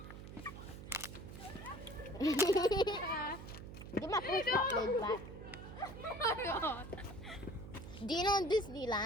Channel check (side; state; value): right; noise; hum, 12 dB below the sound